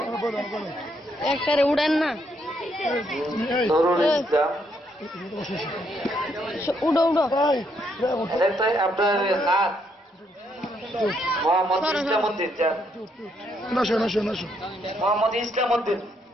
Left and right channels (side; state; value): both; normal; correlation 0.74